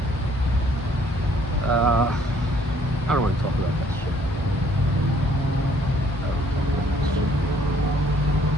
I don't want to talk about that shit.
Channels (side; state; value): both; normal; correlation 0.62